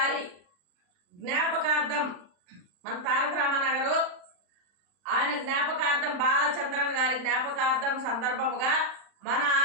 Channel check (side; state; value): left; late; 39 ms